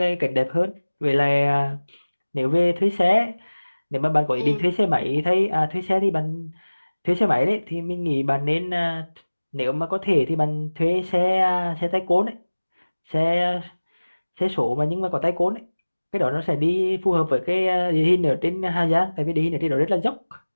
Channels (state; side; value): inverted; both; correlation -1.00